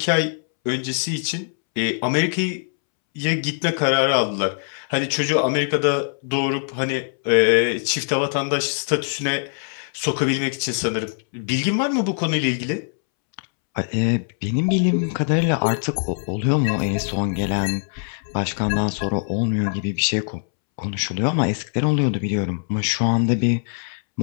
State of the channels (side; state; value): right; silent; 64 dB below the other